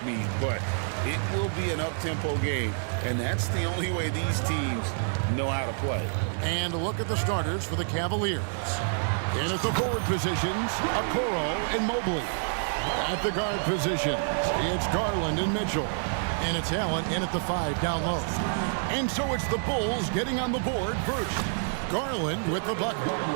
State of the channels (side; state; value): left; silent; digital silence